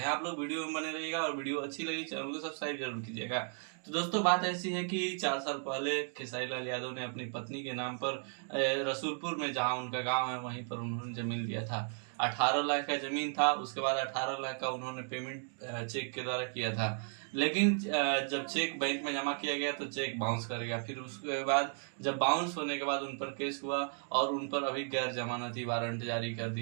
आप लोग वीडियो में बने रहिएगा और वीडियो अच्छी लगी चैनल को सब्सक्राइब जरूर कीजिएगा। तो दोस्तों, बात ऐसी है कि 4 साल पहले खेसारी लाल यादव ने अपनी पत्नी के नाम पर रसूलपुर में, जहाँ उनका गाँव है, वहीं पर उन्होंने जमीन लिया था। 18 लाख का जमीन था। उसके बाद 18 लाख का उन्होंने पेमेंट चेक के द्वारा किया था। लेकिन जब चेक बैंक में जमा किया गया तो चेक बाउंस कर गया। फिर उसके बाद जब बाउंस होने के बाद उन पर केस हुआ और उन पर अभी गैर जमानती वारंट जारी कर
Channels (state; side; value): silent; left; 54 dB below the other